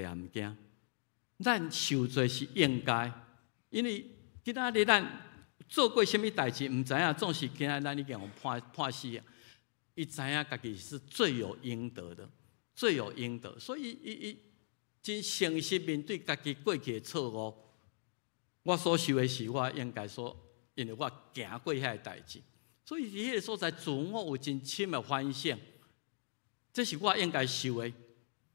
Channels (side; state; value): right; silent; digital silence